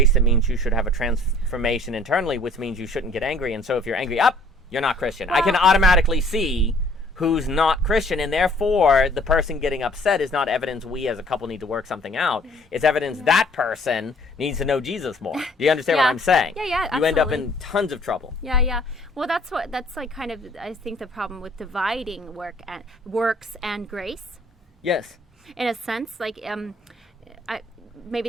that means you should have a transformation internally, which means you shouldn't get angry. And so if you're angry, you're not Christian. I can automatically see who's not Christian, and therefore the person getting upset is not evidence we as a couple need to work something out. It's evidence that person needs to know Jesus more. Do you understand what I'm saying? Yeah, absolutely. You end up in tons of trouble. Yeah. Well, that's like kind of, I think, the problem with dividing works and grace. Yes. In a sense, like maybe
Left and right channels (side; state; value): both; normal; correlation 0.57